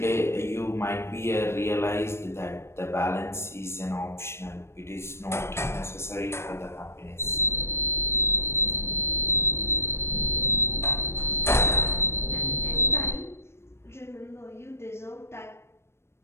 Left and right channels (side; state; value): right; late; 0.12 ms